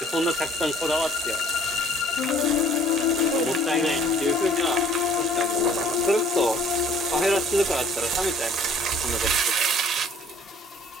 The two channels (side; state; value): both; normal; correlation 0.55